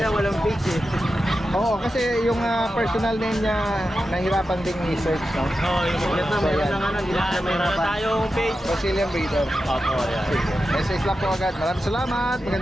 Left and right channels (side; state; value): both; normal; correlation 0.91